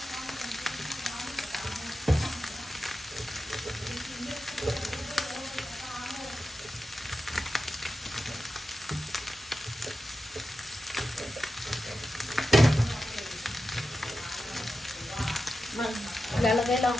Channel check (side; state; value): both; normal; correlation 0.91